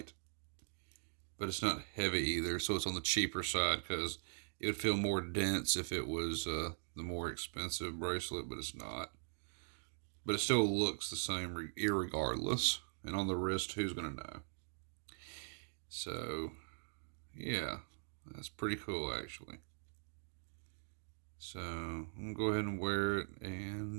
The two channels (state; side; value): silent; left; digital silence